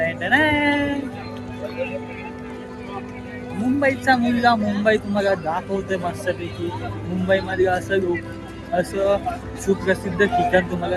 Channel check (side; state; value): both; identical; correlation 1.00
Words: मुंबईचा मुलगा मुंबई तुम्हाला दाखवतोय मस्तपैकी. मुंबईमध्ये असं सुप्रसिद्ध ठिकाण